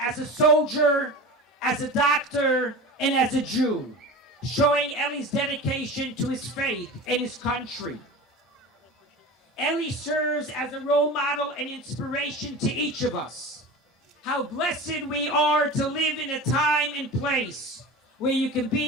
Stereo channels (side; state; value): both; normal; correlation 0.33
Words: a soldier, as a doctor, and as a Jew, showing Eli's dedication to his faith and his country. Eli serves as a role model and inspiration to each of us. How blessed we are to live in a time and place where you can